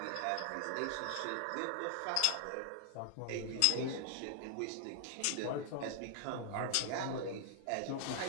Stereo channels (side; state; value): both; different; correlation 0.00